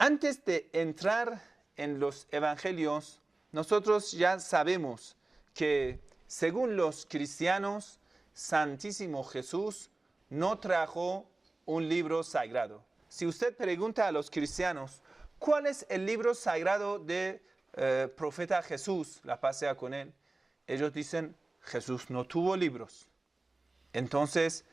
de entrar en los evangelios, nosotros ya sabemos que según los cristianos, Santísimo Jesús no trajo un libro sagrado. Si usted pregunta a los cristianos, ¿cuál es el libro sagrado del profeta Jesús? La paz sea con él. Ellos dicen, Jesús no tuvo libros. Entonces,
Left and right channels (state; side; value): quieter; left; 3.1 dB